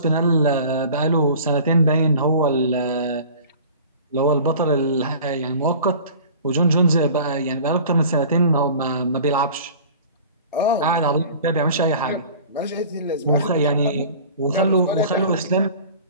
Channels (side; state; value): both; inverted; correlation -0.43